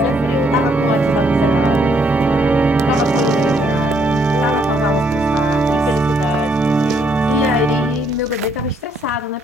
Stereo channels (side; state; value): both; normal; correlation 0.70